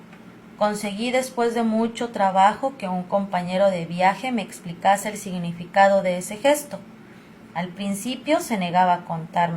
Conseguí después de mucho trabajo que un compañero de viaje me explicase el significado de ese gesto. Al principio se negaba a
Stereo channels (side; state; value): both; identical; correlation 1.00